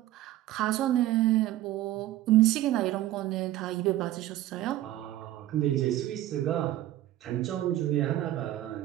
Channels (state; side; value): quieter; left; 14.4 dB